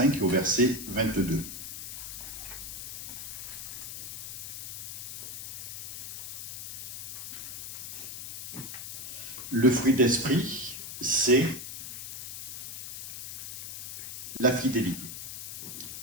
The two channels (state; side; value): noise; left; hiss, 8 dB below the sound